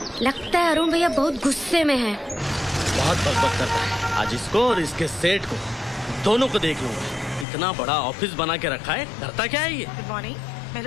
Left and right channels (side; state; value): right; drops out; at 7.5 s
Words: लगता है अरुण भैया बहुत गुस्से में हैं। बहुत बकबक करता है। आज इसको और इसके सेठ को दोनों को देख लूंगा। इतना बड़ा ऑफिस बना के रखा है, डरता क्या है ये? Good morning,